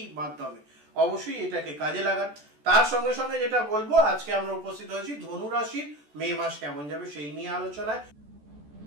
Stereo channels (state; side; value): late; left; 14 ms